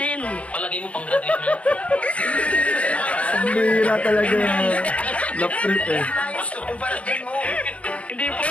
Palagay mo pang graduation. Ang bihira talaga. Love trip eh. Ayos to, kumpara din mo. Hindi po.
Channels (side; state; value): right; late; 0.063 ms